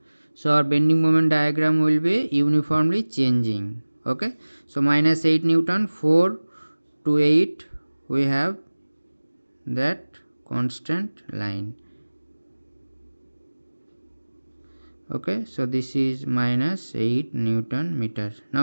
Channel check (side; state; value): both; inverted; correlation -1.00